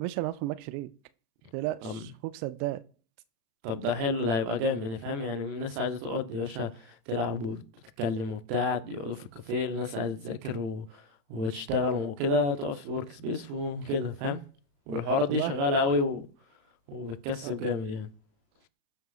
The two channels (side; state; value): left; late; 35 ms